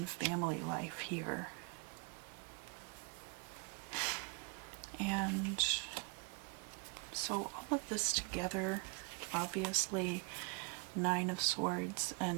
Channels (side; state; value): left; quieter; 32.3 dB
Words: family life here. And so all of this together, obviously, Nine of Swords